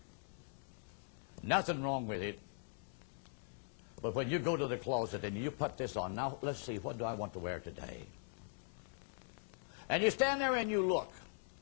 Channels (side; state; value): right; silent; 50 dB below the other